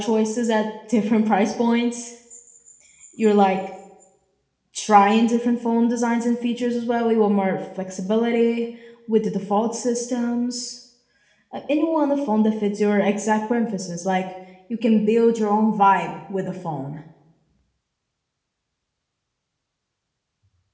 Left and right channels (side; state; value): both; identical; correlation 1.00